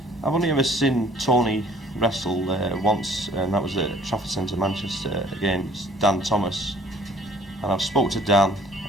I've only ever seen Tony wrestle once, and that was at Trafford Centre, Manchester, against Dan Thomas. And I've spoke to Dan,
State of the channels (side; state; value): both; normal; correlation 0.55